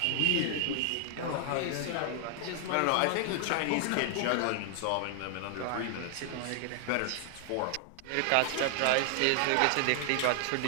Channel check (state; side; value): different; both; correlation 0.00